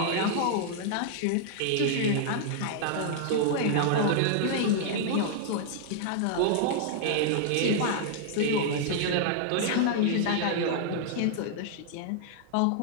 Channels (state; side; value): different; both; correlation -0.01